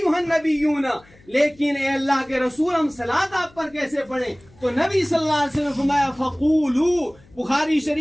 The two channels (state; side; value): noise; left; hum, 28 dB below the sound